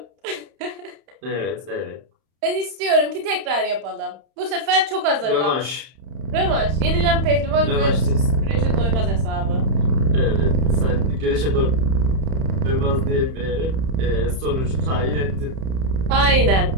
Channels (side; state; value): left; late; 31 ms